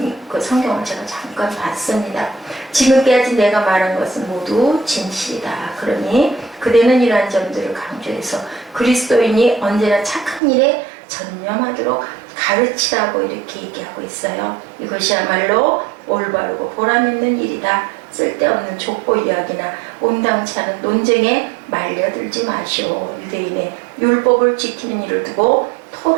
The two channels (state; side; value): drops out; left; at 10.4 s